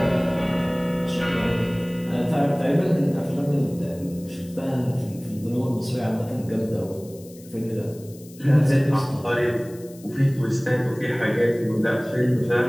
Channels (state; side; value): noise; left; hiss, 22 dB below the sound